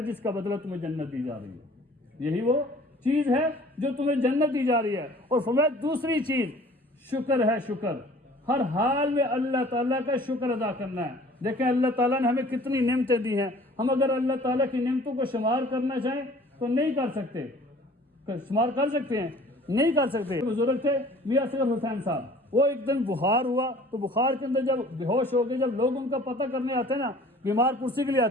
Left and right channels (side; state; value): both; normal; correlation 0.50